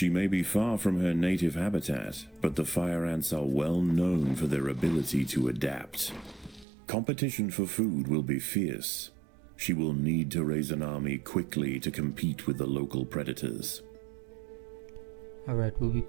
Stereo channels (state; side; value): drops out; left; at 6.7 s